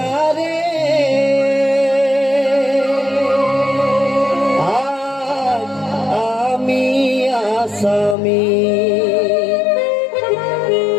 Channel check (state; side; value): drops out; right; at 8.2 s